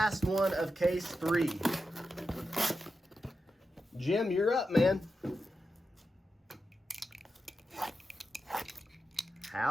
one of case 3. Jim, you're up, man.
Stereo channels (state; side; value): normal; both; correlation 0.89